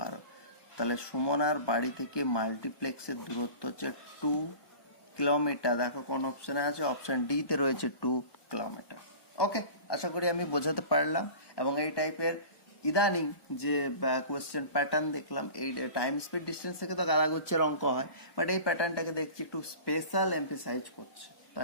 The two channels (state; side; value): late; right; 1.2 ms